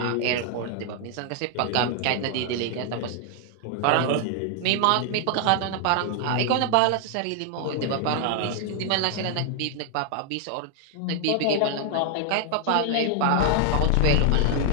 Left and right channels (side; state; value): both; different; correlation 0.00